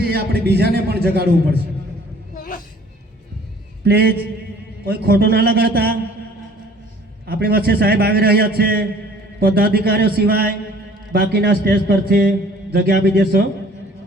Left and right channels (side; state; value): both; normal; correlation 0.52